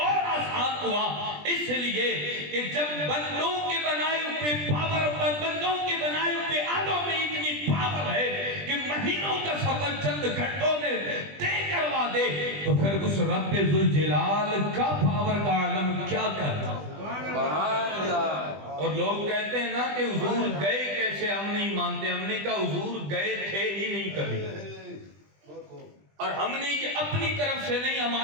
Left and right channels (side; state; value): left; late; 20 ms